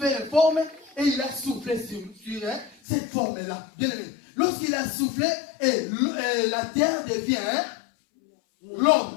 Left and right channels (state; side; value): drops out; right; at 2.8 s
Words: une forme et il a soufflé sur cette forme-là. Bien aimé. Lorsqu'il a soufflé, et la terre devient